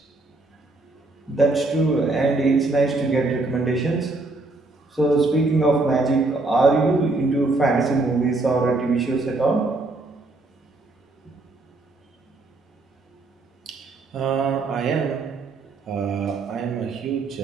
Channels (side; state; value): left; quieter; 3.2 dB